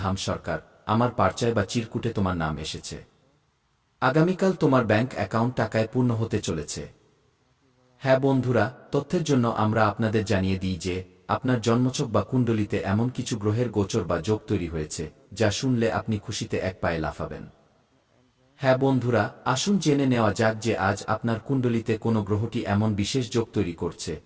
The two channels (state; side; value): identical; both; correlation 1.00